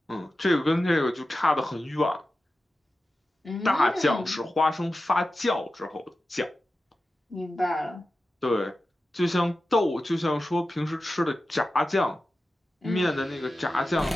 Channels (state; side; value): normal; both; correlation 0.93